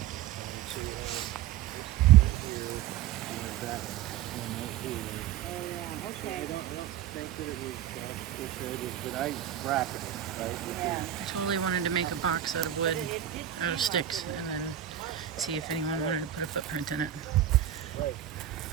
So you have this here, and that one right here. Oh yeah, So okay. I don't think that it was shaded, but I bracketed it, right? Yeah. I totally wanted to make a box out of wood, out of sticks, and then see if anyone wanted to put a footprint in it.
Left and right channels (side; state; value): left; quieter; 11.0 dB